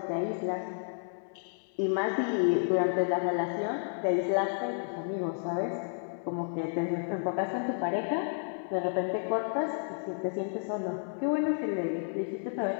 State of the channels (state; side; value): silent; right; 57 dB below the other